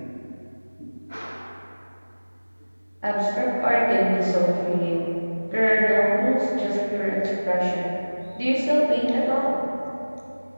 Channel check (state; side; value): inverted; both; correlation -1.00